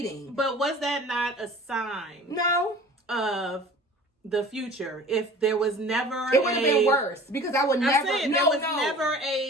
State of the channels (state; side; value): normal; both; correlation 0.43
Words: But was that not a sign No. of the future? If there was never It would have been worse. Because I would never... there was never